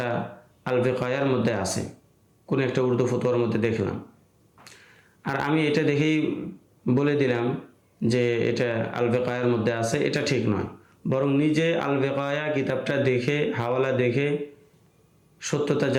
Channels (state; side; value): identical; both; correlation 1.00